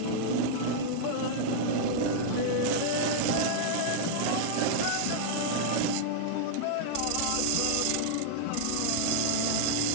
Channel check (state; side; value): different; both; correlation -0.01